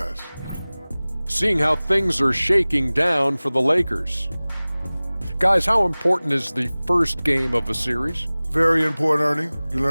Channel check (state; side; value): inverted; both; correlation -0.99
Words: Seeing how things are shaking down for the Lakers. Guys, how important is the first game of a series? Very important, Ernie. You